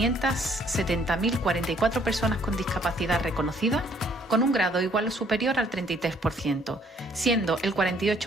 personas con discapacidad reconocidas, con un grado igual o superior al 33%, siendo el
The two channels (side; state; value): both; normal; correlation 0.63